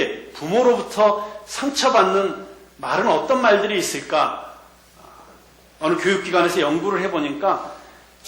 부모로부터 상처받는 말은 어떤 말들이 있을까? 어느 교육기관에서 연구를 해보니까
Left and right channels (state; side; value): identical; both; correlation 1.00